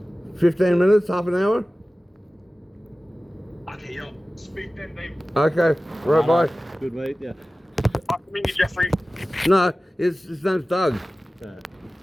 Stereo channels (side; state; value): both; normal; correlation 0.96